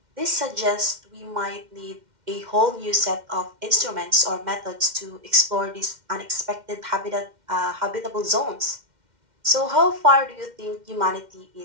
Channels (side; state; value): left; late; 2.1 ms